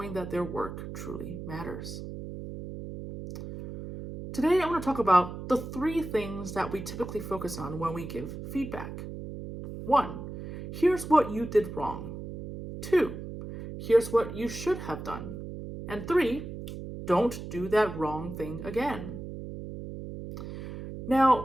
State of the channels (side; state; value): right; noise; hum, 9 dB below the sound